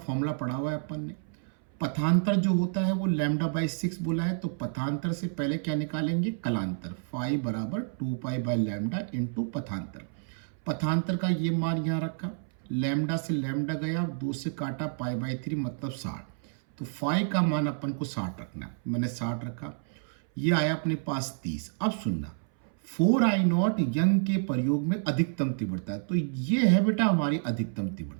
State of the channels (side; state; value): left; silent; 58 dB below the other